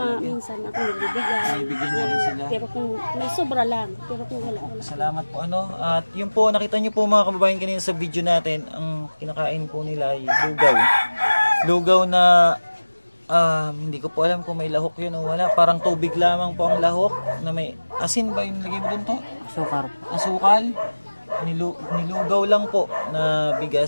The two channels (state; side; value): inverted; both; correlation -1.00